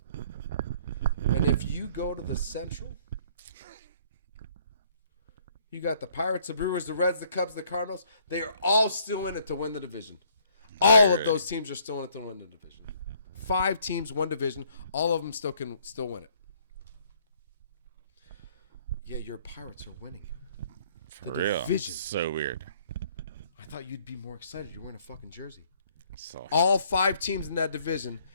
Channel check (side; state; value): both; inverted; correlation -0.62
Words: And if you go to the Central, you got the Pirates, the Brewers, the Reds, the Cubs, the Cardinals. They are all still in it to win the division. All of those teams are still in it to win the division. 5 teams, one division. All of them still can win it. Yeah, your Pirates are winning. For real. Division. So weird. I thought you'd be more excited. You're wearing a fucking jersey. So All 5 teams in that division.